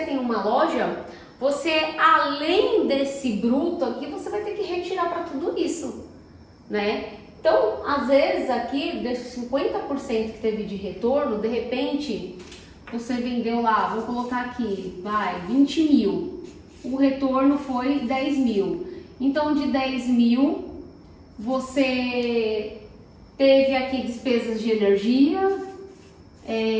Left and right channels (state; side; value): identical; both; correlation 1.00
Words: uma loja, você, além desse bruto aqui, você vai ter que retirar para tudo isso, né? Então, às vezes aqui, desses 50% que teve de retorno, de repente, você vendeu lá, vou colocar aqui, vai, 20 mil. O retorno foi 10 mil. Então, de 10 mil, você teve aqui despesas de energia,